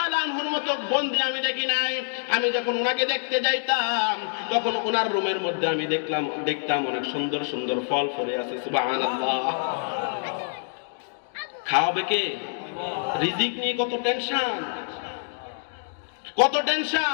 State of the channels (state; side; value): silent; right; digital silence